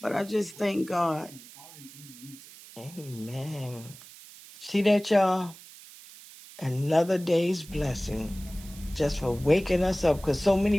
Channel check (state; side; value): noise; right; hiss, 19 dB below the sound